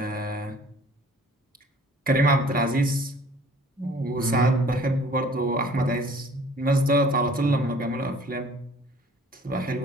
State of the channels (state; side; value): normal; both; correlation 0.52